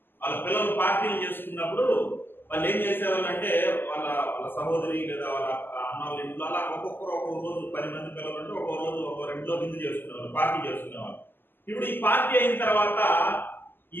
వాళ్ళ పిల్లలు పార్టీలు చేసుకున్నప్పుడు వాళ్ళు ఏం చేసేవాళ్ళు అంటే వాళ్ళ సహోదరి లేదా వాళ్ళ అన్న వాళ్ళ ఇంట్లో అలా ఒక్కొక్కరు ఒక్కొక్క రోజు 10 మంది పిల్లలు అంటే ఒక్కో రోజు ఒక్కో రెండులో విందు చేసుకునేవాళ్ళు, పార్టీ చేసుకునేవాళ్ళు. ఇప్పుడు ఈ పార్టీ అయిన తర్వాత ఈ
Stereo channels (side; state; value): right; late; 0.095 ms